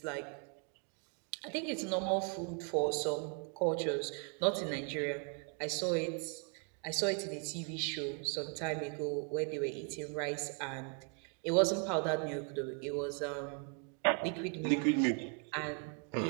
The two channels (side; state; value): left; quieter; 38.2 dB